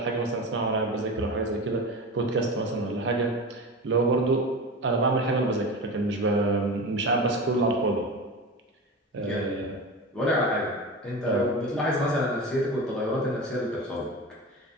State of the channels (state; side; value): normal; both; correlation 0.28